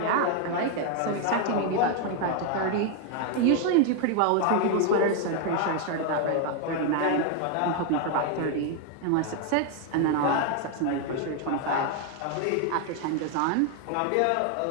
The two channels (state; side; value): different; both; correlation 0.00